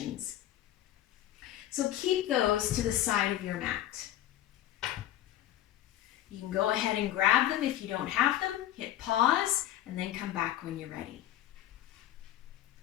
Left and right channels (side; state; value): right; quieter; 12.9 dB